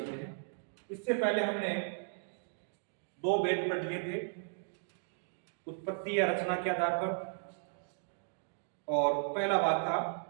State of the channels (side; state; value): left; silent; digital silence